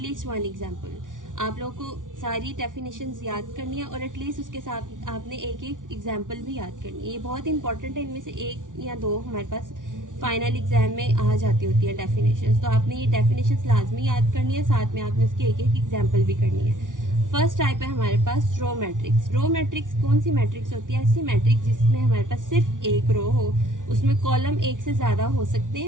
least one example. आप लोगों को सारी डेफिनेशंस याद करनी है और एटलीस्ट उसके साथ आपने एक एक एग्जाम्पल भी याद करनी है. ये बहुत इंपॉर्टेंट है. इनमें से एक या दो हमारे पास फाइनल एग्जाम में आ जाती होती है डेफिनेशंस. तो आपने ये डेफिनेशंस लाजमी याद करनी है, साथ में आपने उसकी एक एक एग्जाम्पल भी करनी है. फर्स्ट टाइप है हमारे पास रो मैट्रिक्स. रो मैट्रिक्स कौन सी मैट्रिक्स होती है? ऐसी मैट्रिक्स जिसमें हमारे पास सिर्फ एक रो हो, उसमें कॉलम एक से ज्यादा हो सकते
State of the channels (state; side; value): late; left; 0.88 ms